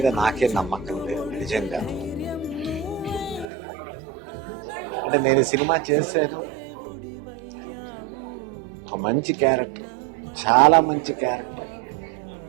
నాకే నమ్మకం లేదు నిజంగా. అంటే నేను సినిమా చేశాను, ఒక మంచి క్యారెక్టర్, చాలా మంచి క్యారెక్టర్,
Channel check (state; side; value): drops out; left; at 3.5 s